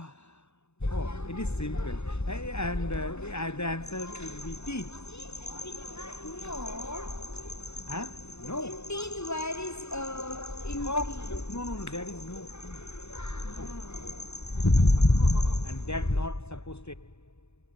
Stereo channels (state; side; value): late; right; 0.81 ms